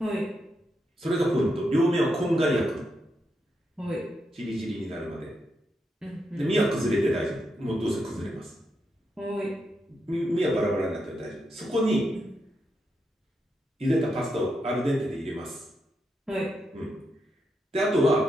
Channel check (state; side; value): normal; both; correlation 0.83